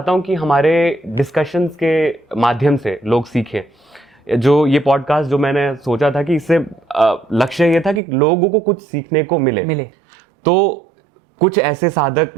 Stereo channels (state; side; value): drops out; left; at 8.0 s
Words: हूं कि हमारे डिस्कशंस के माध्यम से लोग सीखें। जो ये पॉडकास्ट जो मैंने सोचा था कि इससे लक्ष्य ये था कि लोगों को कुछ सीखने को मिले। तो कुछ ऐसे साधक